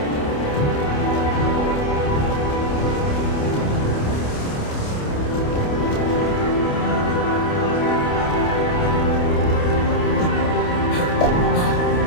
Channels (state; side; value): late; right; 28 ms